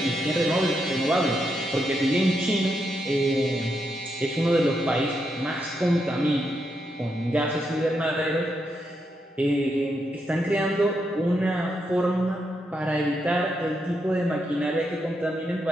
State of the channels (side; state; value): both; normal; correlation 0.81